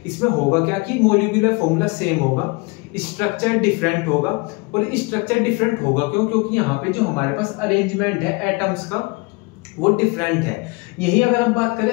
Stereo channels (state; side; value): quieter; right; 28.0 dB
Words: इसमें होगा क्या कि मॉलिक्यूलर फॉर्मूला सेम होगा, स्ट्रक्चर डिफरेंट होगा। और स्ट्रक्चर डिफरेंट होगा क्यों, क्योंकि यहाँ पे जो हमारे पास अरेंजमेंट है एटम्स का वो डिफरेंट है। यही अगर हम बात